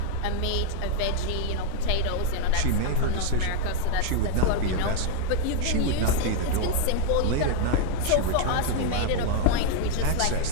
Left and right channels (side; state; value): both; different; correlation 0.00